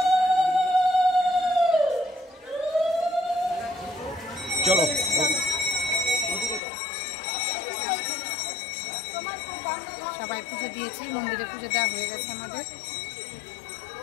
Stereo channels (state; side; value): drops out; right; at 6.6 s